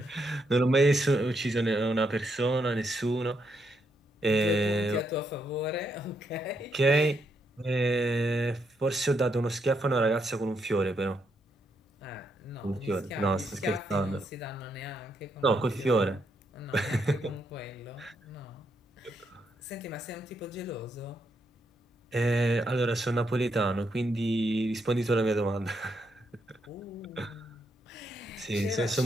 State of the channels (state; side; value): normal; both; correlation 0.79